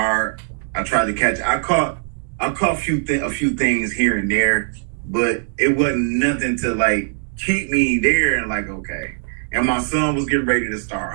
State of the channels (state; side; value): silent; left; digital silence